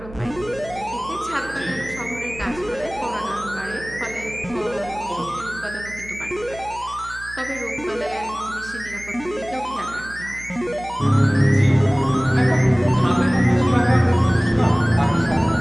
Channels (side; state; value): right; noise; hum, 17 dB below the sound